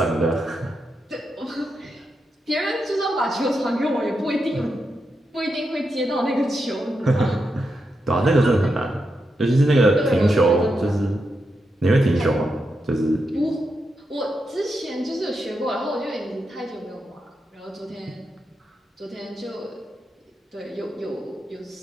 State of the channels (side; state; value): both; normal; correlation 0.85